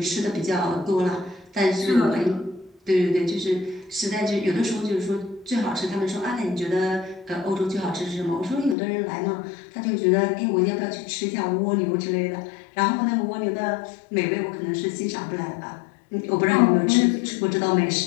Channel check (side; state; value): right; drops out; at 8.8 s